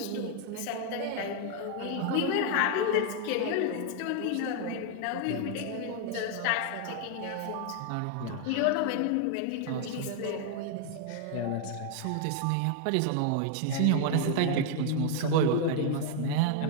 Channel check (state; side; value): different; both; correlation 0.00